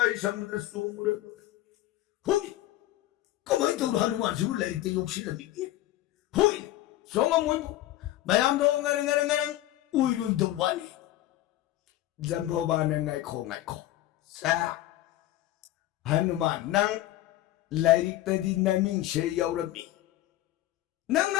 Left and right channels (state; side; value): quieter; right; 15.0 dB